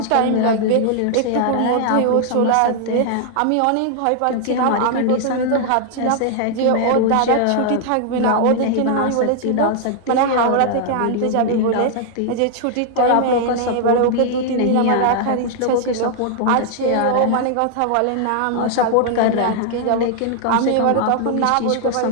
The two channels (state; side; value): different; both; correlation 0.00